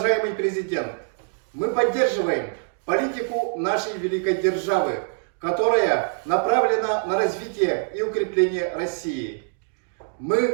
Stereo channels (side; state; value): left; silent; digital silence